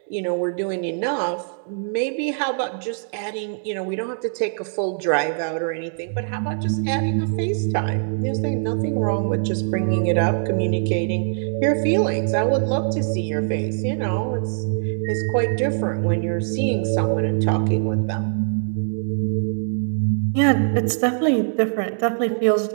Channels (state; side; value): silent; left; digital silence